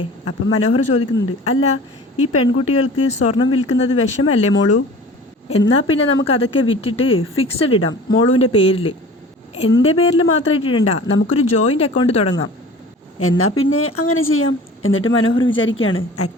അപ്പം മനോഹർ ചോദിക്കുന്നുണ്ട്, അല്ല ഈ പെൺകുട്ടികൾക്ക് സ്വർണം വിൽക്കുന്നത് വിഷമല്ലേ മോളു? എന്നാൽ പിന്നെ നമുക്ക് അതൊക്കെ വിറ്റിട്ട് ഫിക്സഡ് ഇടാം മോളുവിൻ്റെ പേരിൽ, എൻ്റെ പേരിൽ മാത്രമായിട്ട് ഇടണ്ട, നമുക്കൊരു ജോയിൻ്റ് അക്കൗണ്ട് തുടങ്ങാം. എന്നാൽ പിന്നെ അങ്ങനെ ചെയ്യാം. എന്നിട്ട് മനോഹർ വിചാരിക്കുകയാണ്,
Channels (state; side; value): normal; both; correlation 0.42